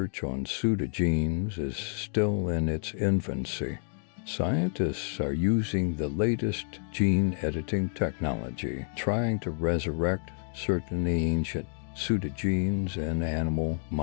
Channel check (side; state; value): right; silent; 56 dB below the other